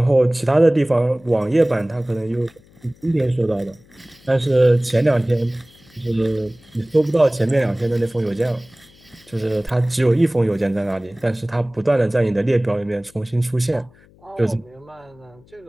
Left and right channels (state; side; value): noise; left; hum, 28 dB below the sound